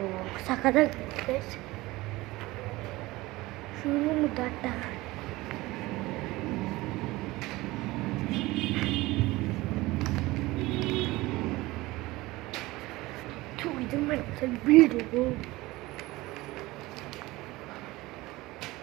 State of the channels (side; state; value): left; quieter; 19.8 dB